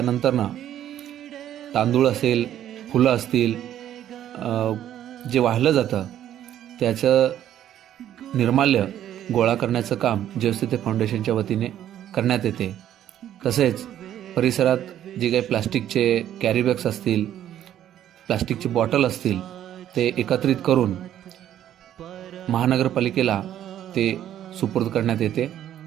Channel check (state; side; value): quieter; left; 11.3 dB